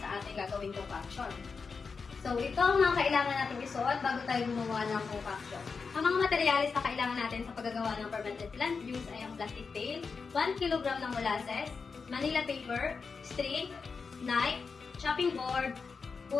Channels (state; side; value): quieter; right; 5.0 dB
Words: sa ating gagawing concoction. So, ito ang mga kailangan natin isuot bago tayo gumawa ng concoction. Ang mga materialis na kailangan natin sa paggagawa ng fermented plant juice ay ang plastic pail, 1 kg ng molasses, Manila paper, string, knife, chopping board,